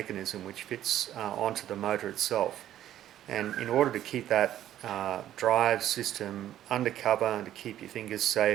which fits onto the motor itself, and in order to keep that drive system under cover and to keep your fingers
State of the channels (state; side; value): quieter; left; 12.0 dB